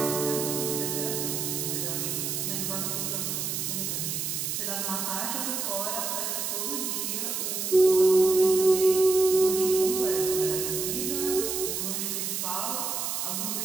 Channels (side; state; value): right; noise; hiss, 2 dB below the sound